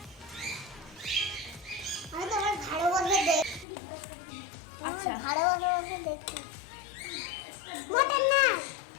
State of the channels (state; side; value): drops out; right; at 3.7 s